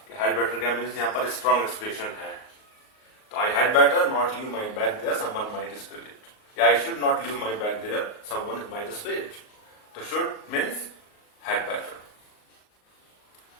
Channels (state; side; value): late; right; 38 ms